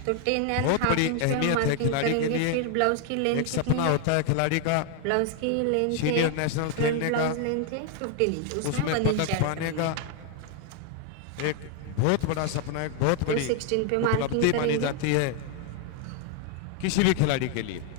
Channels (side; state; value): both; different; correlation 0.00